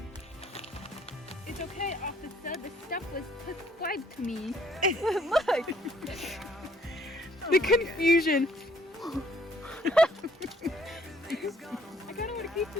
It's okay, officer. The stuff was prescribed to me. Look! The confusion. I kind of want to keep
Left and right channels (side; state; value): both; normal; correlation 0.63